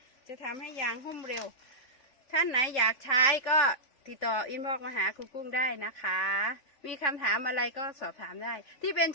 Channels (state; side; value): late; right; 3.4 ms